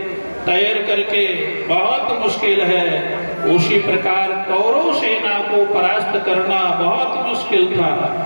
तैर करके बहुत मुश्किल है, उसी प्रकार कौरव सेना को परास्त करना बहुत मुश्किल था।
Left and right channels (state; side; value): inverted; both; correlation -1.00